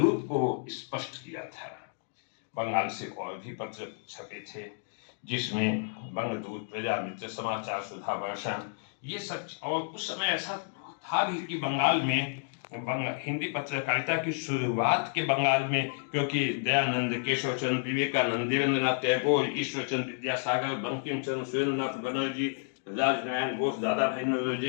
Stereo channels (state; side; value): silent; right; digital silence